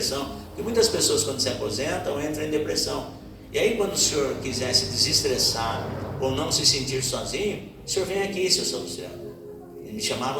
porque muitas pessoas quando se aposentam entram em depressão. E aí quando o senhor quiser se desestressar ou não se sentir sozinho, o senhor vem aqui, seu Salustiano. Eles me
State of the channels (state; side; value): identical; both; correlation 1.00